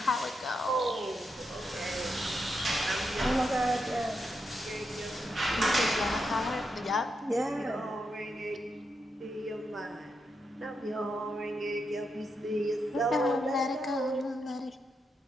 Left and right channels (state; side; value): normal; both; correlation 0.84